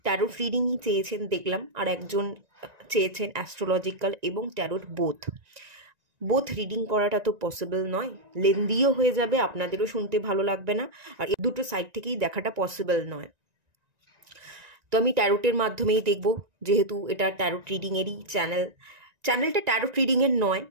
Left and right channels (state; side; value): late; left; 1.9 ms